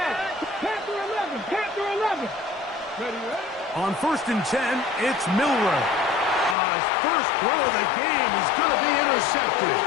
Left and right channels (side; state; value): right; drops out; at 6.6 s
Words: 11, Panther 11. Ready? On 1st and 10, it's Milroe. His first throw of the game is going to be intercepted.